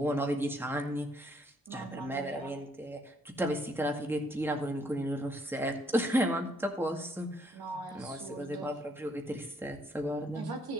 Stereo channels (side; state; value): both; normal; correlation 0.69